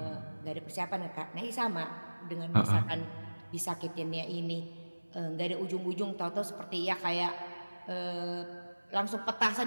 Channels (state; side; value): inverted; both; correlation -1.00